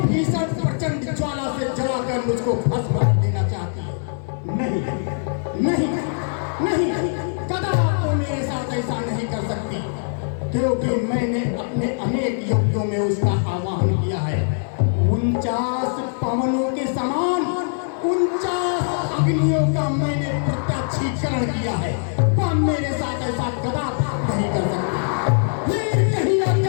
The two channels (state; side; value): silent; right; digital silence